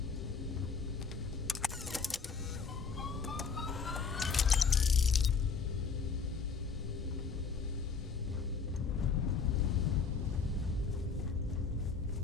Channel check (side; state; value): right; quieter; 5.4 dB